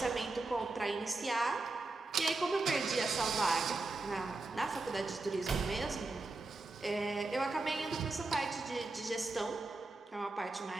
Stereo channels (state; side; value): quieter; left; 3.3 dB